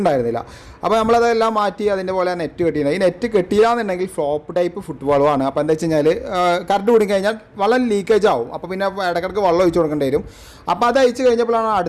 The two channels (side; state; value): both; identical; correlation 1.00